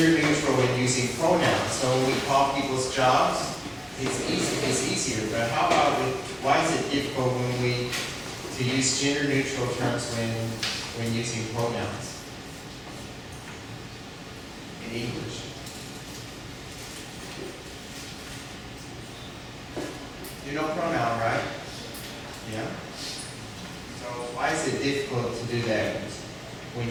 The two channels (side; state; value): both; identical; correlation 1.00